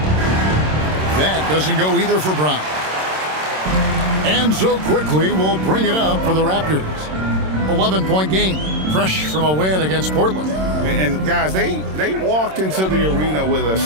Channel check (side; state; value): left; late; 26 ms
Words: That doesn't go either for Brown. And so quickly we'll bring it up for the Raptors. 11-point game, fresh from a win against Portland. And guys, they walked into the arena with a